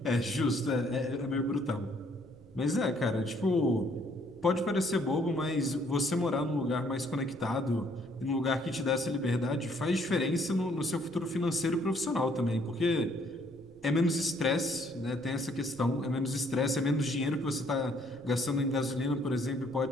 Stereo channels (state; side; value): noise; right; rumble, 24 dB below the sound